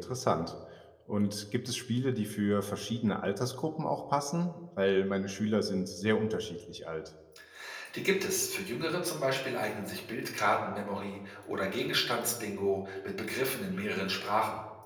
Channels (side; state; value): both; identical; correlation 1.00